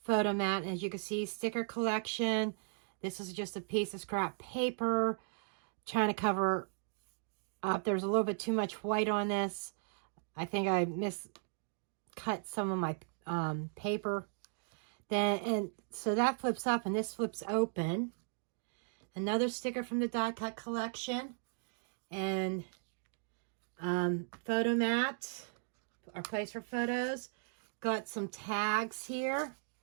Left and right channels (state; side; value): silent; left; digital silence